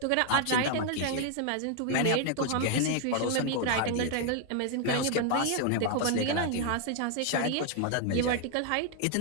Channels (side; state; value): both; different; correlation 0.00